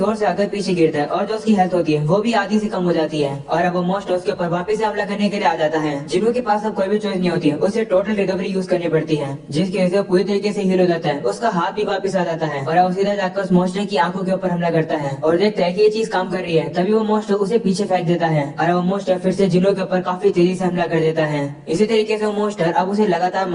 से आकर पीछे गिरता है और जो उसकी हेल्थ होती है वो भी आधी से कम हो जाती है और अब वो मोस्ट उसके ऊपर वापस से हमला करने के लिए आ जाता है। जिन्हो के पास अब कोई भी चॉइस नहीं होती है, उसे टोटल रिकवरी यूज करनी पड़ती है, जिसकी वजह से पूरी तरीके से हील हो जाता है। उसका हाथ भी वापस आ जाता है और अब सीधा जाकर उस मोस्टर की आंखों के ऊपर हमला करता है और देखता है कि ये चीज काम कर रही है। तभी वो मोस्टर उसे पीछे फेंक देता है और वो मोस्टर फिर से जिन्हो के ऊपर काफी तेजी से हमला कर देता है। इसी तरीके से वो मोस्टर अब उसे लगातार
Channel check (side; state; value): both; identical; correlation 1.00